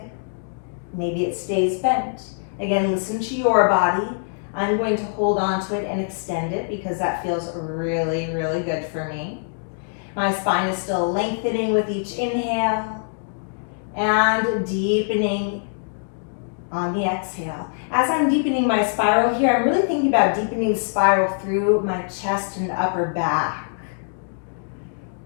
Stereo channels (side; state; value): right; silent; digital silence